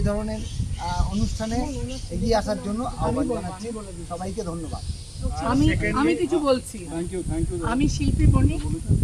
ধরনের অনুষ্ঠানে এগিয়ে আসার জন্য আহ্বান জানাচ্ছি। সবাইকে ধন্যবাদ। আমি কিছু বলছি। আমি শিল্পী বণিক,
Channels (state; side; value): identical; both; correlation 1.00